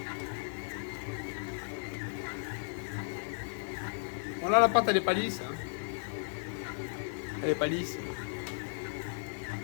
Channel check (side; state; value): right; silent; digital silence